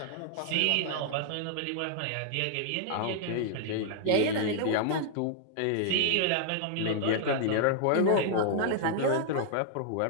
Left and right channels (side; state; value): both; different; correlation -0.01